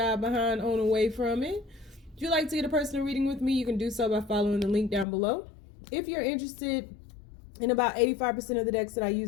behind on away from it. If you'd like to get a personal reading with me, you can do so by following the link down below. If you're interested in about 85% of the decks that I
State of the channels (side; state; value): right; drops out; at 5.1 s